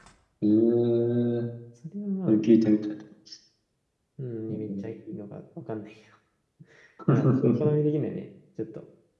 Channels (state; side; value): identical; both; correlation 1.00